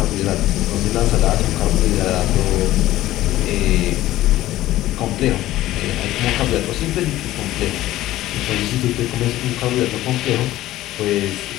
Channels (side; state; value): right; quieter; 15.3 dB